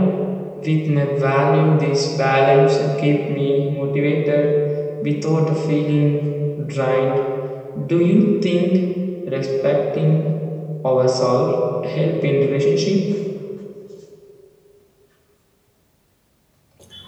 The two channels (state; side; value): identical; both; correlation 1.00